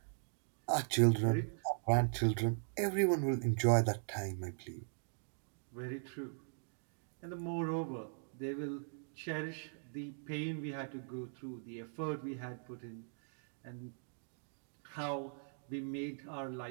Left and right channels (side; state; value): left; silent; digital silence